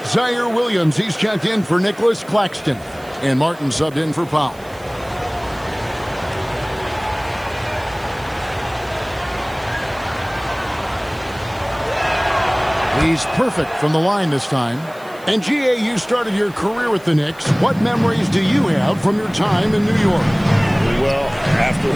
Zaire Williams. He's checked in for Nicholas Claxton. And Martin subbed in for Powell. He's perfect from the line this time. And GA, you started your career with the Knicks. What memories do you have from your time in New York? Well, after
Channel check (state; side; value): noise; right; hiss, 25 dB below the sound